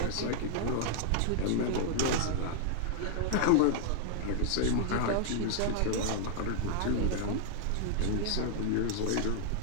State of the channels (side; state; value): both; different; correlation -0.01